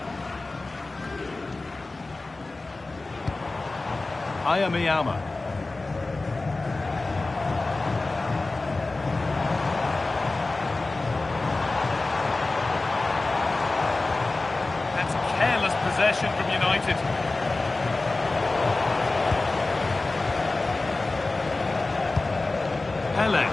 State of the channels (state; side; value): quieter; right; 3.3 dB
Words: Ayamiyama. That's careless possession from United. Dembele.